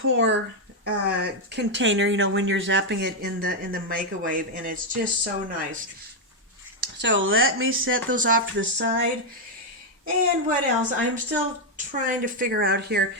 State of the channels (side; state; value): both; normal; correlation 0.01